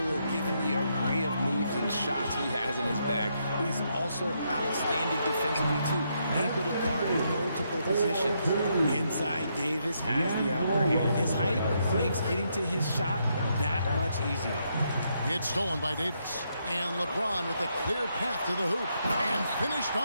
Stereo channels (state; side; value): inverted; both; correlation -0.78